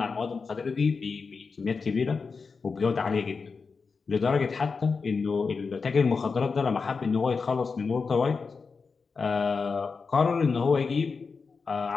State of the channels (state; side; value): quieter; right; 4.8 dB